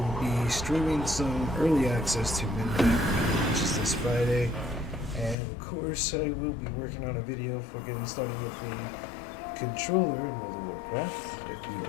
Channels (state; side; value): drops out; right; at 5.4 s